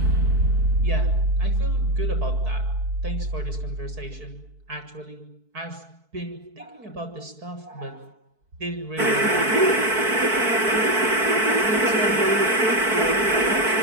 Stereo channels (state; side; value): late; left; 4.6 ms